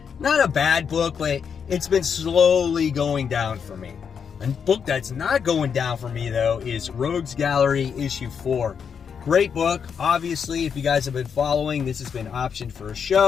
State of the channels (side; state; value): right; quieter; 6.9 dB